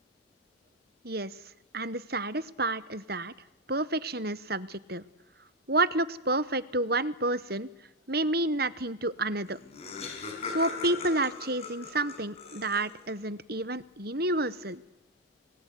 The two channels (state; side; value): normal; both; correlation 0.05